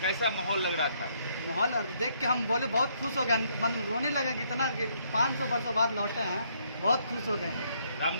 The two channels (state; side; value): inverted; both; correlation -0.70